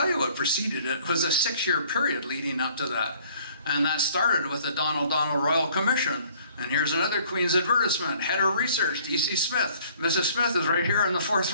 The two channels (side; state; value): both; inverted; correlation -0.57